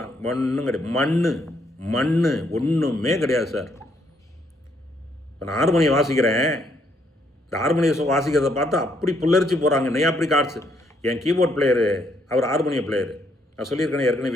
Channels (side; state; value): both; normal; correlation 0.72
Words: ஒன்றும் கிடையாது, மண் ஒன்றுமே கிடையாது சார். இப்போ நான் ஹார்மோனியம் வாசிக்கிறேன், இந்த ஹார்மோனியம் வாசிக்கிறத பார்த்து அப்படி புல்லரிச்சு போகிறாங்க, நெய் அப்படி கார்ட்ஸ். என் கீபோர்ட் பிளேயரு அவர் ஹார்மோனியம் பிளேயரு, நான் சொல்லியிருக்கேன் ஏற்கனவே,